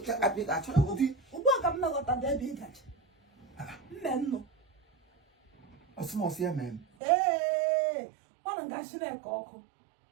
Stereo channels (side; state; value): left; drops out; at 6.9 s